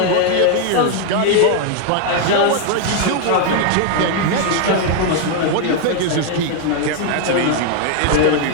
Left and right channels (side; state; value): both; different; correlation 0.00